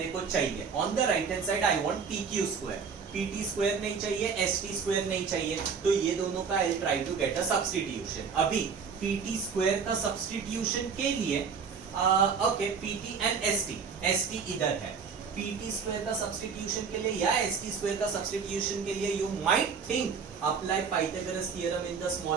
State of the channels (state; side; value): quieter; left; 5.9 dB